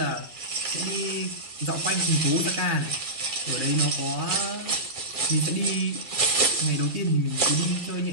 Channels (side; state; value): right; late; 2.3 ms